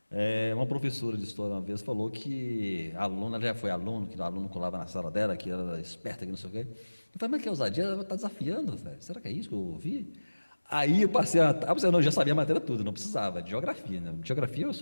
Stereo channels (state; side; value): inverted; both; correlation -1.00